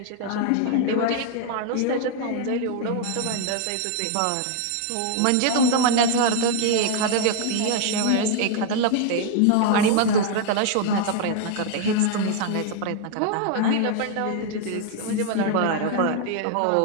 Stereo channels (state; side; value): different; both; correlation 0.00